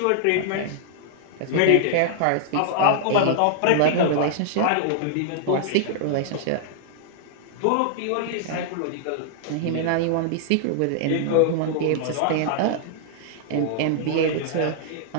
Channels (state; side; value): different; both; correlation -0.01